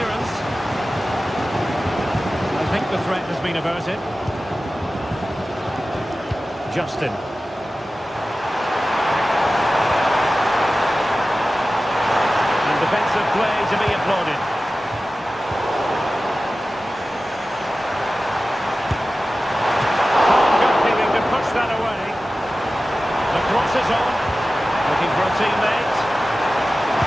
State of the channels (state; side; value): normal; both; correlation 0.95